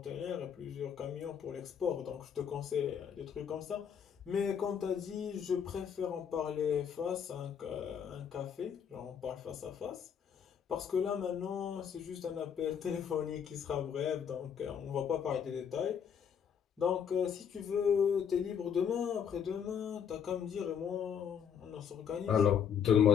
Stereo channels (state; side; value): quieter; right; 7.8 dB